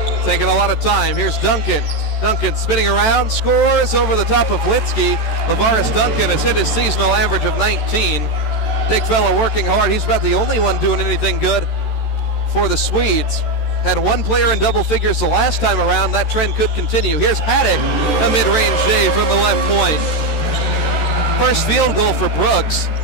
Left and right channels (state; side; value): late; right; 13 ms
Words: Taking a lot of time. Here's Duncan. Duncan spinning around, scores over the top of Litsky. Lavaris Duncan has hit his seasonal average of 19. Big fella working hard. He's about the only one doing anything good for the Swedes. Had 1 player in double figures the last time around. That trend could continue. Here's Haddock, a mid-range J from the left point. First field goal for Brooks.